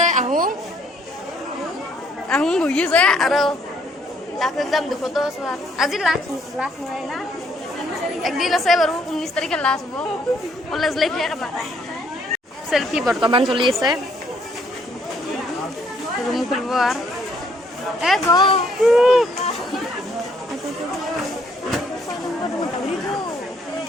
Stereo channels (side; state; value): both; normal; correlation 0.67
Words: আহোঁ বহি আছে আৰু লাষ্ট এক্সাম দুখতো আজি লাষ্ট নহয় না একদিন আছে বাৰু 19 তাৰিখে লাষ্ট হ'ব কলেজ লাইফ শেষ আমাৰ চেল্ফি বৰ্তমান চলি আছে ৰুম খুলিব আৰু